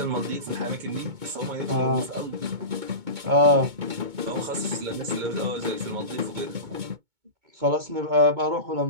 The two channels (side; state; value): left; late; 2.2 ms